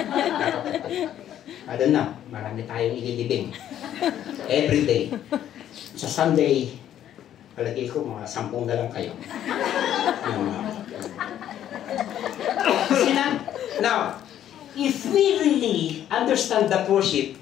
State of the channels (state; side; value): quieter; right; 11.0 dB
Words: I don't know, marami tayong ililibing. Every day. Sa Sunday, palagay ko, mga 10 na lang kayo. Now, if we really understand the worship,